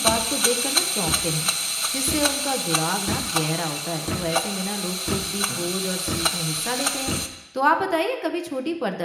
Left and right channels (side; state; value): both; identical; correlation 1.00